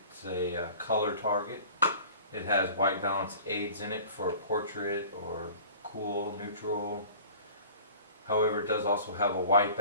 a color target. It has white balance aids in it for portrait or cool, neutral. However, it does also have a white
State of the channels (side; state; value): both; inverted; correlation -0.44